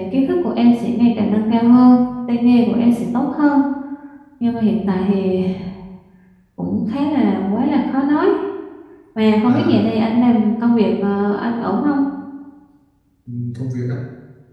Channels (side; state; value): both; identical; correlation 1.00